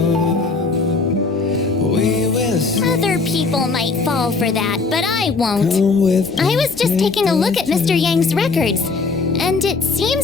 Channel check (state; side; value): quieter; right; 4.2 dB